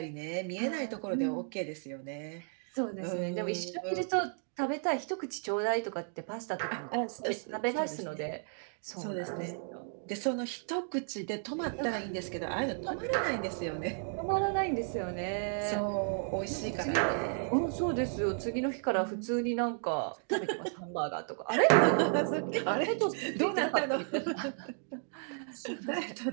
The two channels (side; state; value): left; silent; 55 dB below the other